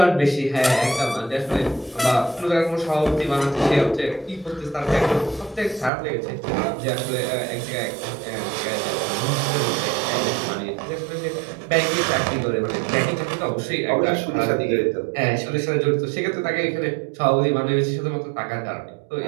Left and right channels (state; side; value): drops out; left; at 5.9 s